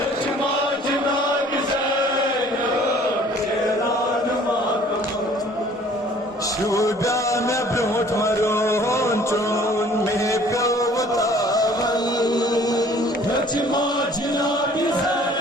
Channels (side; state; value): both; normal; correlation 0.54